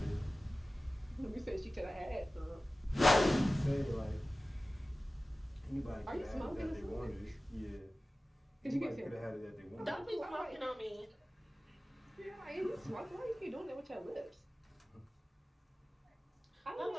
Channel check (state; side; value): normal; both; correlation 0.97